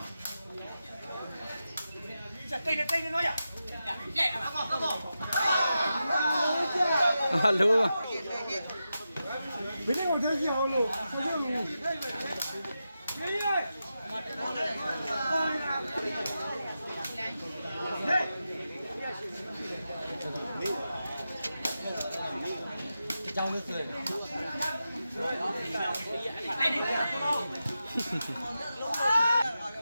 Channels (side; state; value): both; inverted; correlation -0.90